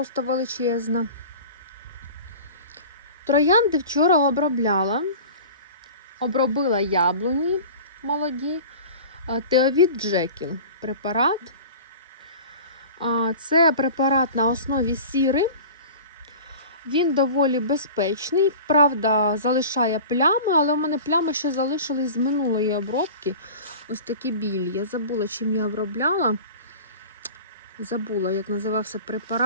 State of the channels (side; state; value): both; inverted; correlation -0.38